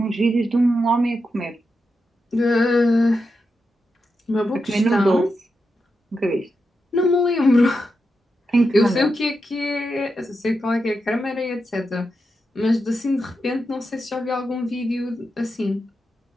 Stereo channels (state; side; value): normal; both; correlation 0.87